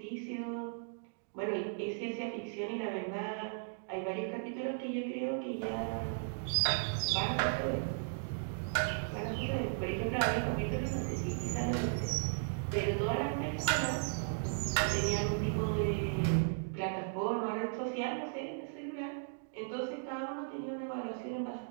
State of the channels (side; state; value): left; silent; digital silence